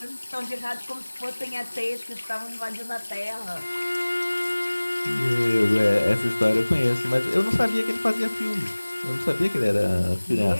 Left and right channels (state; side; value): inverted; both; correlation -1.00